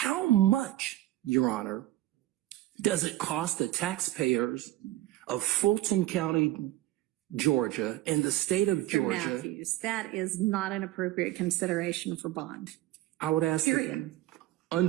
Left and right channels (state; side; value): quieter; left; 15.5 dB